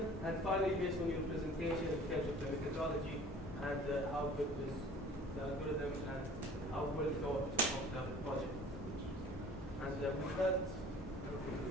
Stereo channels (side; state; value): both; normal; correlation 0.47